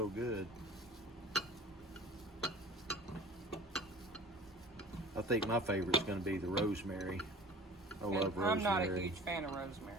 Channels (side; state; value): both; normal; correlation 0.43